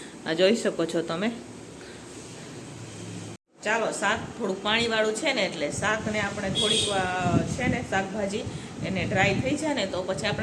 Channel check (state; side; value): identical; both; correlation 1.00